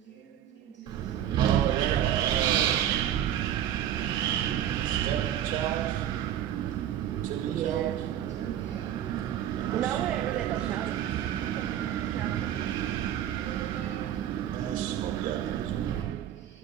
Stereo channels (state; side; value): quieter; left; 10.9 dB